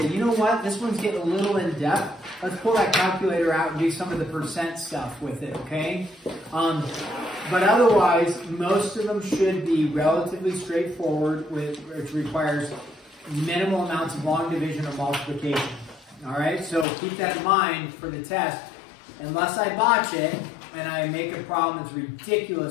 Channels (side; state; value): right; drops out; at 16.9 s